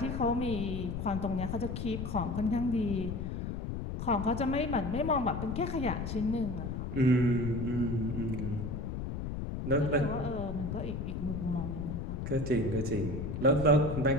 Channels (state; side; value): noise; left; rumble, 4 dB below the sound